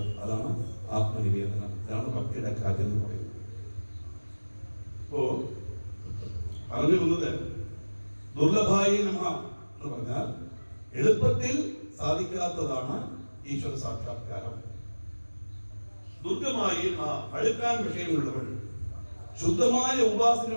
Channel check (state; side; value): inverted; both; correlation -1.00